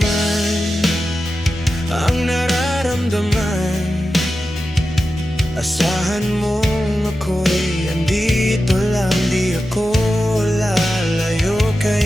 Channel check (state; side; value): normal; both; correlation 0.92